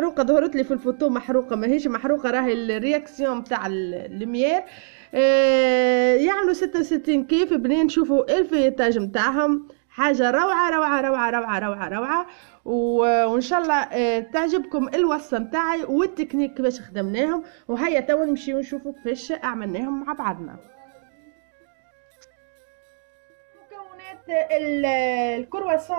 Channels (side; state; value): left; silent; digital silence